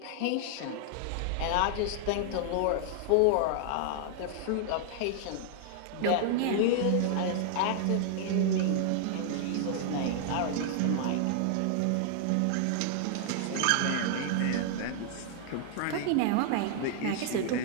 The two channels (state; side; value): different; both; correlation -0.01